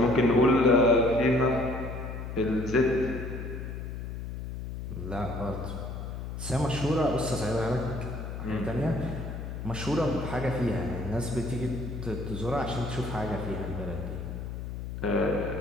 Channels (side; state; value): left; noise; hum, 7 dB below the sound